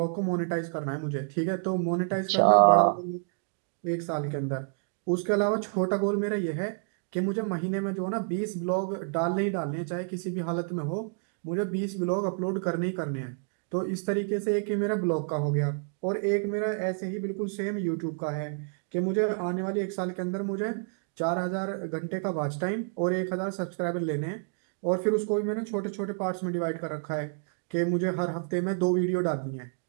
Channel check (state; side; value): silent; left; 58 dB below the other